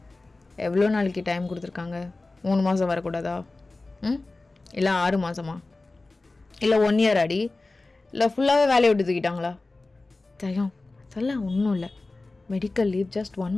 எவ்வளோ நாளைக்கு டைம் கொடுத்துருக்காங்க? 3 மாதம் வரக்கூடாதா? இல்லை 6 மாதமா? இல்லை 1 இயர் அடி? இல்லை ஃபுல்லாகவே வேலையை விட்டு தூக்கிட்டாங்களா? தயம் அதெல்லாம் ஒன்றும் இல்லை, மெடிக்கல் லீவ் ஜஸ்ட் 1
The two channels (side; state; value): right; quieter; 3.3 dB